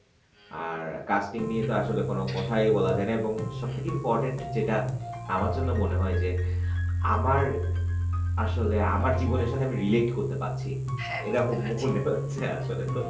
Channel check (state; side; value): identical; both; correlation 1.00